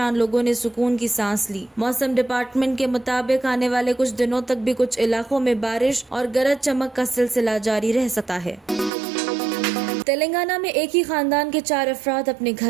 लोगों ने सुकून की सांस ली। मौसम डिपार्टमेंट के मुताबिक आने वाले कुछ दिनों तक भी कुछ इलाकों में बारिश और गरज चमक का सिलसिला जारी रह सकता है। तेलंगाना में एक ही खानदान के 4 अफराद अपने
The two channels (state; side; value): drops out; left; at 8.9 s